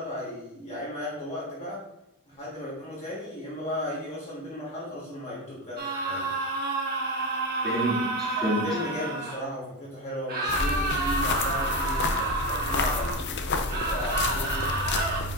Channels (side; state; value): both; normal; correlation 0.16